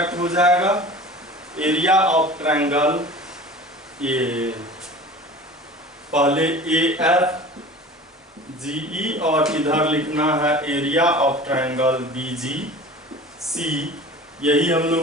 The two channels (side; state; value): both; normal; correlation 0.39